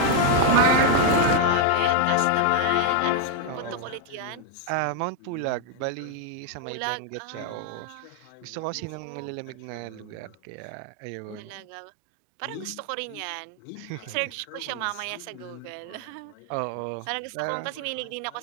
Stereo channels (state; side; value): different; both; correlation 0.00